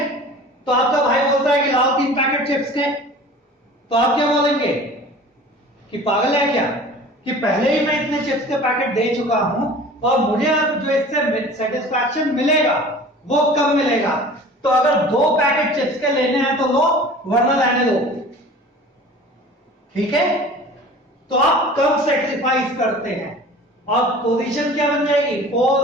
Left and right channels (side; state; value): both; normal; correlation 0.42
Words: तो आपका भाई बोलता है कि लाओ 3 पैकेट चिप्स के, तो आप क्या बोलेंगे कि पागल है क्या, कि पहले ही मैं इतने चिप्स के पैकेट दे चुका हूं और मुझे अब जो इससे सेटिस्फैक्शन मिलेगा वो कम मिलेगा, तो अगर 2 पैकेट चिप्स के लेने हैं तो लो, वरना रहने दो, ठीक है। तो आप कम सेक्रीफाइस करते हैं और पोजीशन क्या बन जाएगी? 4